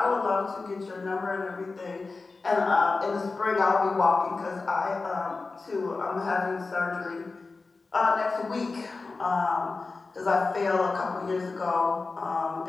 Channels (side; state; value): right; quieter; 3.9 dB